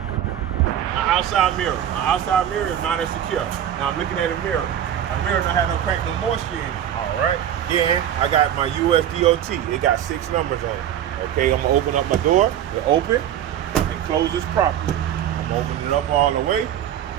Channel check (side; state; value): left; quieter; 10.4 dB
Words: outside mirror. My outside mirror is mounted secure. Now I'm looking at a mirror. A mirror don't have no crack, no moisture in it. All right. Then I got my USDOT. It got 6 numbers on it. Okay, I'm gonna open up my door. It open and closes properly. I'm opening it up all the way.